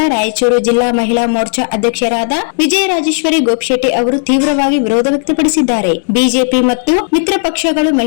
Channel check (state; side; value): silent; right; digital silence